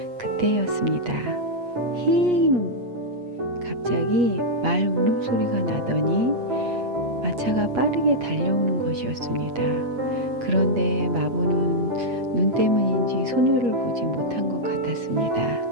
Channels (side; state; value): left; late; 8.4 ms